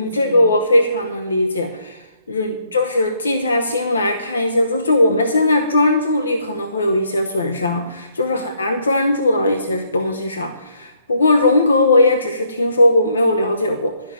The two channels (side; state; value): both; inverted; correlation -0.71